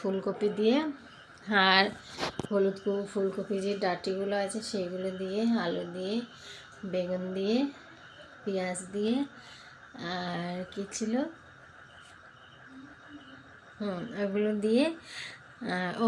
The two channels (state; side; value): identical; both; correlation 1.00